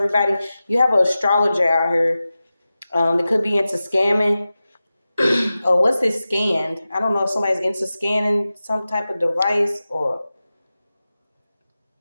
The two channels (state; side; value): inverted; both; correlation -0.95